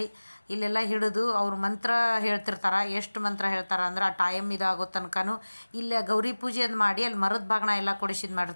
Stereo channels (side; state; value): both; inverted; correlation -1.00